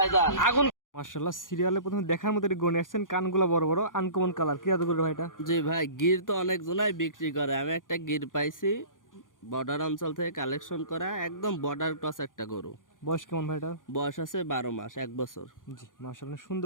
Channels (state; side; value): late; right; 0.89 ms